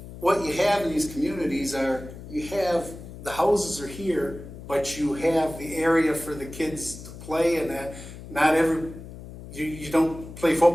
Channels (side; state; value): left; noise; hum, 14 dB below the sound